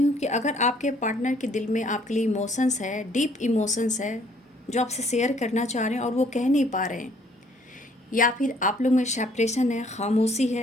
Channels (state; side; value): normal; both; correlation 0.62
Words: कि अगर आपके पार्टनर के दिल में आपके लिए इमोशंस है, डीप इमोशंस है, जो आपसे शेयर करना चाह रहे हैं और वो कह नहीं पा रहे हैं, या फिर आप लोग में सेपरेशन है, खामोशी